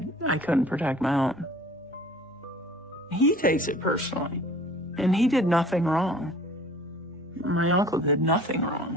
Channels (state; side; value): normal; both; correlation 0.48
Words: couldn't protect my own. He takes it personally, and he did nothing wrong. My uncle did nothing